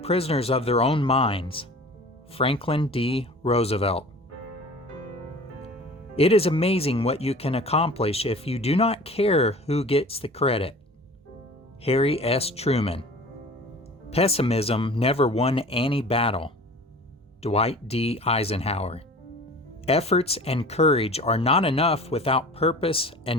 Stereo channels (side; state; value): both; normal; correlation 0.42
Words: of their own minds. Franklin D. Roosevelt. It is amazing what you can accomplish if you do not care who gets the credit. Harry S. Truman. Pessimism never won any battle. Dwight D. Eisenhower. Efforts and courage are not enough without purpose